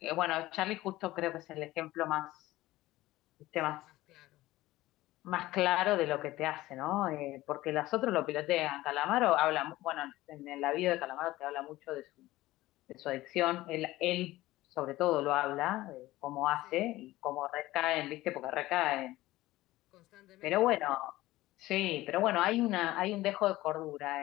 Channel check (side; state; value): right; quieter; 17.3 dB